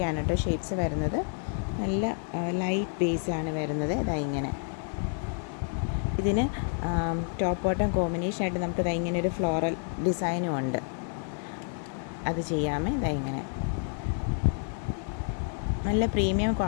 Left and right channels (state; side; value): silent; right; 56 dB below the other